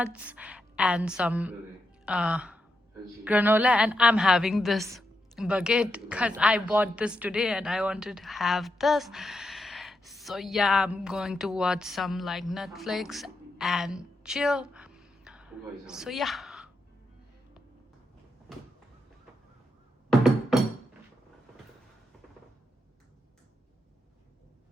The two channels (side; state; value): both; normal; correlation 0.85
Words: and some granola, and I'm having this baguette because I bought this today and I wanted to have this. So yeah, I'm going to watch some like Netflix and chill. So yeah.